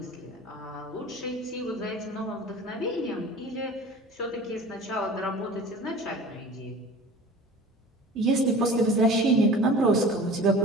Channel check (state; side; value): normal; both; correlation 0.41